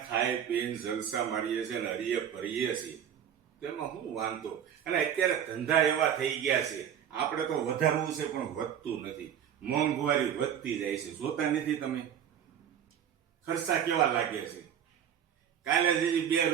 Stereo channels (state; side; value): quieter; left; 9.1 dB